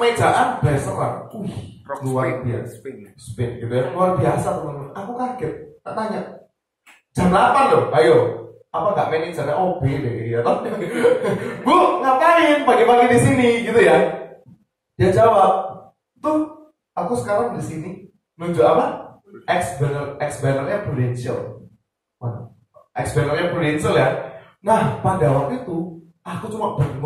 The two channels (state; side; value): identical; both; correlation 1.00